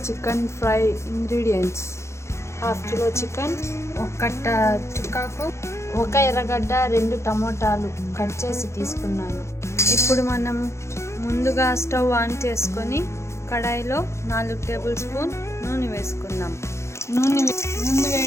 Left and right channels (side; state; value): right; late; 0.13 ms